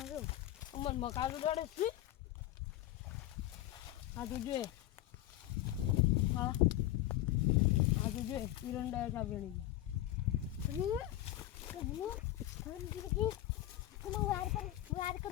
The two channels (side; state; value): right; quieter; 14.5 dB